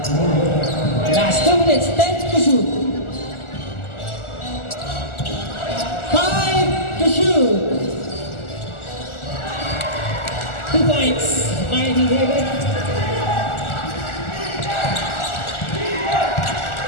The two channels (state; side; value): late; right; 1.4 ms